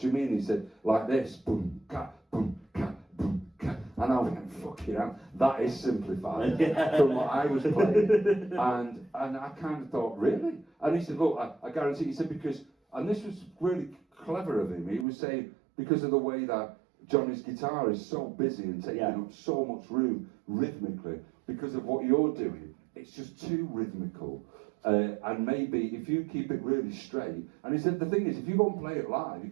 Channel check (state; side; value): drops out; left; at 15.1 s